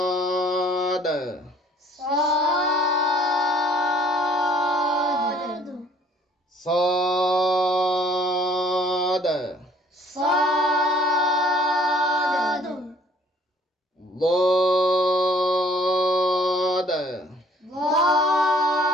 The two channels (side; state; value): both; normal; correlation 0.58